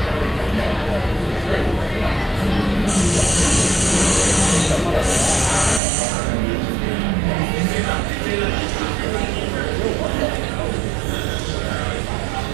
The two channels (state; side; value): drops out; left; at 5.8 s